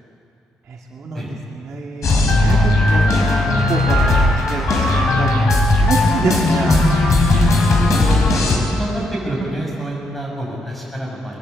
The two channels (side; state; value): both; normal; correlation 0.77